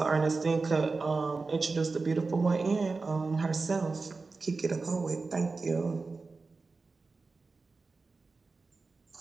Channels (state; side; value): quieter; left; 4.0 dB